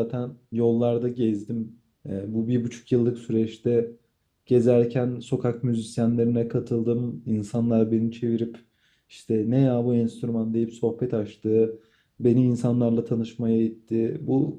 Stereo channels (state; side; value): identical; both; correlation 1.00